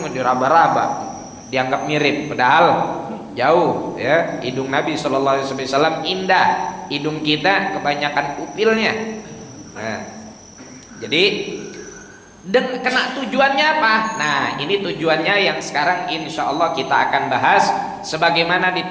diraba-raba, dianggap mirip, padahal jauh ya. Hidung Nabi sallallahu alaihi wasallam indah, hidung kita kebanyakan upilnya. Nah, jadi kena tujuannya apa? Nah, ini tujuannya yang sekarang insya Allah kita akan bahas sebagaimana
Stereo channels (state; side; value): identical; both; correlation 1.00